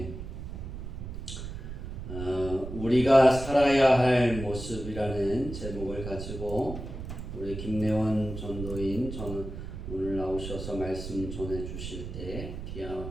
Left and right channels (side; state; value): right; noise; rumble, 8 dB below the sound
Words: 우리가 살아야 할 모습이라는 제목을 가지고 우리 김래원 전도인 오늘 나오셔서 말씀 전해 주실 때 귀한